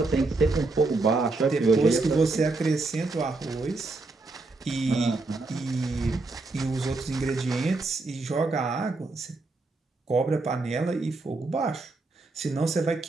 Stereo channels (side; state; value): left; quieter; 3.4 dB